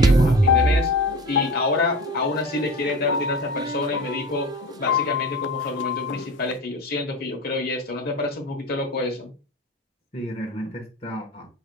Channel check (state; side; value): normal; both; correlation 0.33